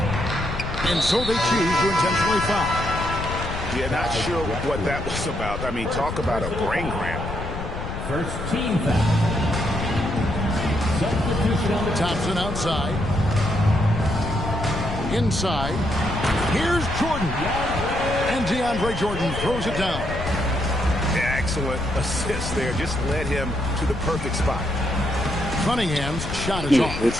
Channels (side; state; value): left; noise; rumble, 6 dB below the sound